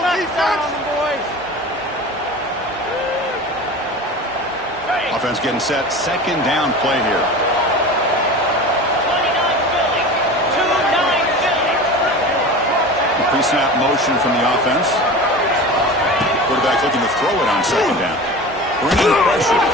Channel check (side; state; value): both; normal; correlation 0.34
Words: Offense getting set. Second down play here. Pre-snap motion from the offense. Quarterback looking to throw it on second down. Bringing pressure.